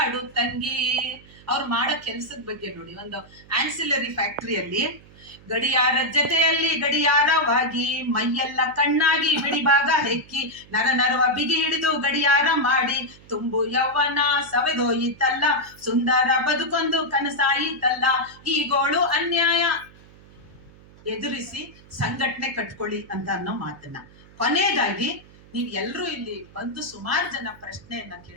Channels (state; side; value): noise; right; hum, 24 dB below the sound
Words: ತಂಗಿ. ಅವ್ರು ಮಾಡೋ ಕೆಲ್ಸದ ಬಗ್ಗೆ ನೋಡಿ, ಒಂದು ಆನ್ಸಿಲರಿ ಫ್ಯಾಕ್ಟರಿಯಲ್ಲಿ ಗಡಿಯಾರ ಜೊತೆಯಲ್ಲಿ ಗಡಿಯಾರವಾಗಿ ಮೈಯೆಲ್ಲ ಕಣ್ಣಾಗಿ ಬಿಡಿಭಾಗ ಹೆಕ್ಕಿ ನರ ನರವ ಬಿಗಿ ಹಿಡಿದು ಗಡಿಯಾರ ಮಾಡಿ ತುಂಬು ಯೌವನ ಸವೆದೋಯಿತಲ್ಲ, ಸುಂದರ ಬದುಕೊಂದು ಕನಸಾಯಿತಲ್ಲ, ಈ ಗೋಳು ಅನ್ಯಾಯ ಎದುರಿಸಿ ಸಂಘಟನೆ ಕಟ್ಕೊಳ್ಳಿ ಅಂತ ಅನ್ನೋ ಮಾತನ್ನ. ಕೊನೆಯದಾಗಿ ನೀವ್ ಎಲ್ರೂ ಇಲ್ಲಿ ಬಂದು ಸುಮಾರು ಜನ ಪ್ರಶ್ನೆಯನ್ನ